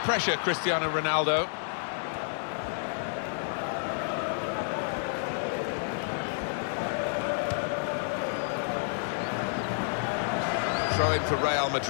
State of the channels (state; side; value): silent; right; digital silence